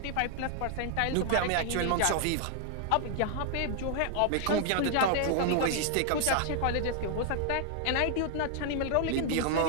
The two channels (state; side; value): different; both; correlation 0.00